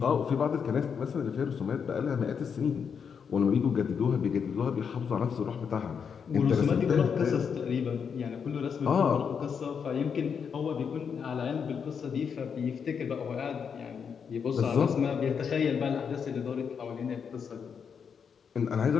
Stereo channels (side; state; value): right; quieter; 6.7 dB